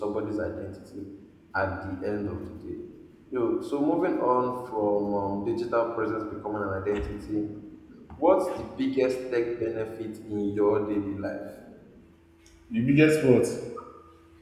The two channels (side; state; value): both; identical; correlation 1.00